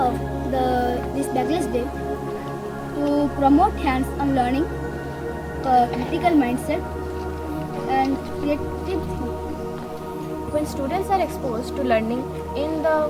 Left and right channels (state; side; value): identical; both; correlation 1.00